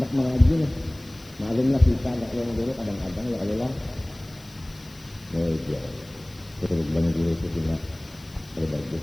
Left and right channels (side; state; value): left; noise; hiss, 24 dB below the sound